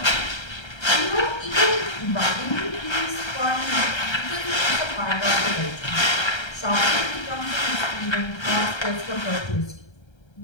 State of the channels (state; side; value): late; right; 1.3 ms